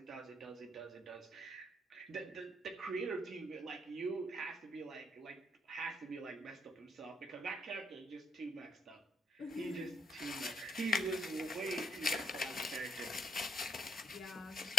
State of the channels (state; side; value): normal; both; correlation 0.73